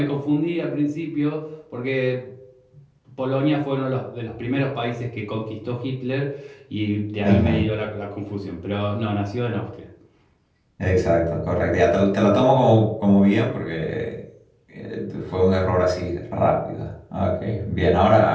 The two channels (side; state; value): both; identical; correlation 1.00